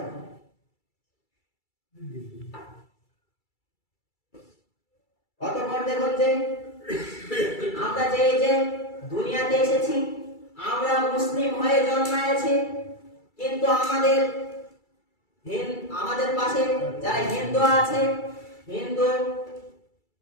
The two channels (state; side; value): late; right; 2.3 ms